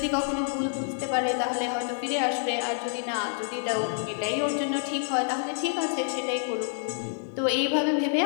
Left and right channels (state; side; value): silent; right; digital silence